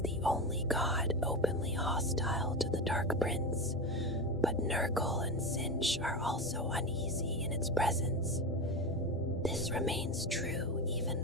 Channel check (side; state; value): both; normal; correlation 0.20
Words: the only god openly hostile to the Dark Prince, but Nurgle and Sinch are also uneasy in its presence. This remains true even